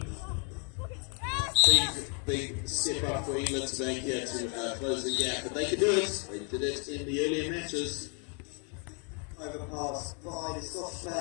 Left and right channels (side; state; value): right; quieter; 39.0 dB